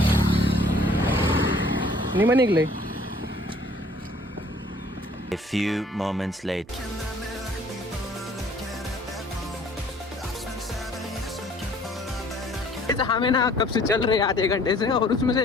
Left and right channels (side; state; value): both; normal; correlation 0.56